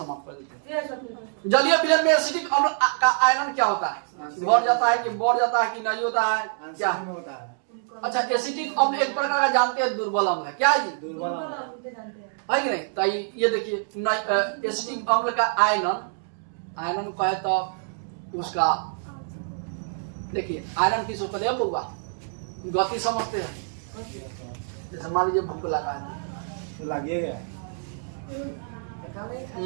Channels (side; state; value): left; silent; digital silence